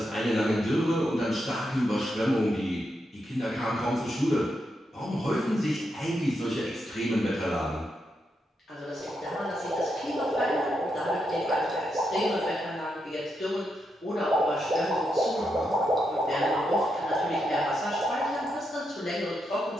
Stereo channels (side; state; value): both; normal; correlation 0.83